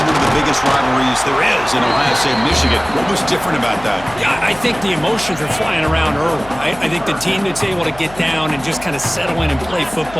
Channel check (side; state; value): left; noise; hum, 18 dB below the sound